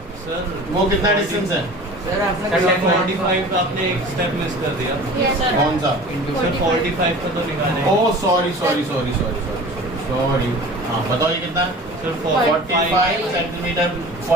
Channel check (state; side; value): normal; both; correlation 0.40